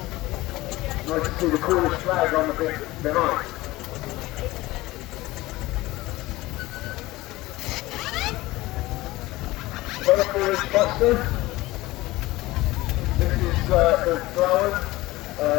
Nice to see the Cornish flag on the bit behind. Another 4-inch Buster. This is the Plowing.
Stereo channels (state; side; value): quieter; right; 19.0 dB